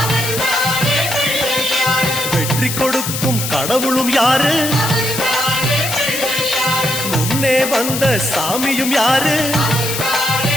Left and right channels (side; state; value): left; noise; hiss, 4 dB below the sound